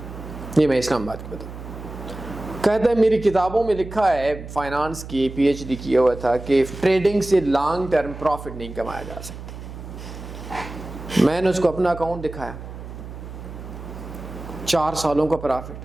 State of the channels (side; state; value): right; noise; hum, 12 dB below the sound